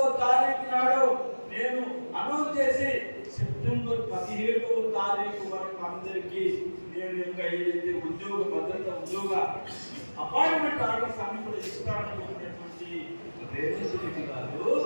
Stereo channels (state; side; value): inverted; both; correlation -1.00